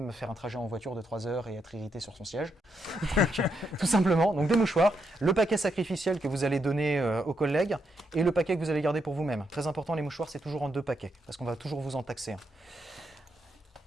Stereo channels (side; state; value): both; normal; correlation 0.80